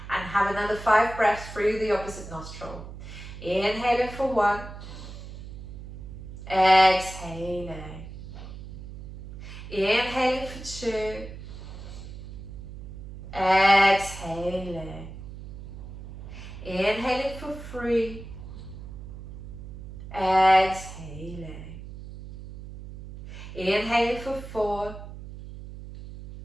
and have another 5 breaths through the opposite nostril. Inhaling for 1, exhaling. Inhaling for 2, exhaling. Inhaling for 3, exhaling. Inhaling for 4,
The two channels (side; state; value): right; noise; hum, 12 dB below the sound